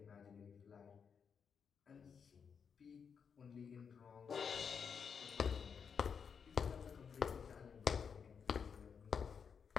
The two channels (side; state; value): right; quieter; 6.6 dB